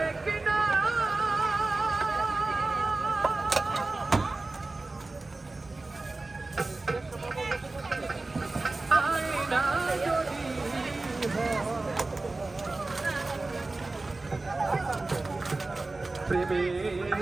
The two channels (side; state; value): left; quieter; 3.2 dB